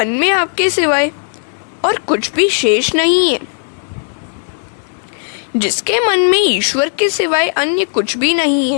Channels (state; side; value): silent; right; digital silence